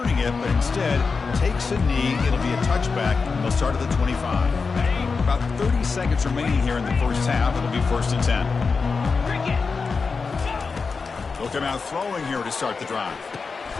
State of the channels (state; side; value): quieter; right; 4.8 dB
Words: it, but instead takes a knee. It'll be a touchback. They'll start at the 25. About 30 seconds remaining here in the first half. It'll be 1st and 10. They'll come out throwing here to start the drive.